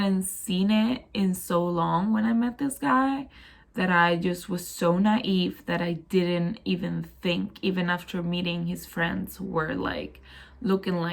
seen it in so long when I met this guy that I just was so naive that I didn't even think, even after meeting his friends who were like looking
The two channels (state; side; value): identical; both; correlation 1.00